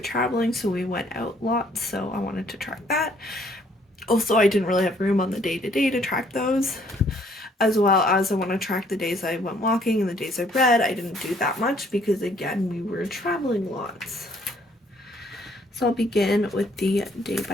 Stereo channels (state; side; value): normal; both; correlation 0.63